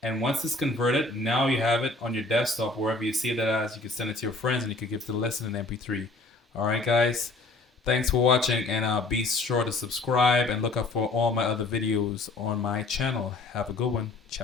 And once it's converted, now you have it on your desktop, wherever you see that as. You can send it to your friends, and you can give it to listen in MP3. All right, guys. Thanks for watching, and be sure to subscribe and look up for all my other videos on my channel. Have a good one.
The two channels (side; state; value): right; quieter; 3.3 dB